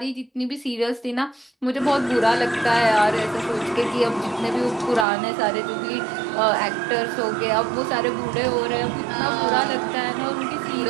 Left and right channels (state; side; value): drops out; left; at 5.1 s